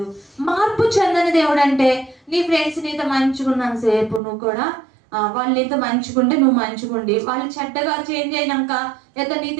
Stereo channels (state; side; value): drops out; left; at 4.2 s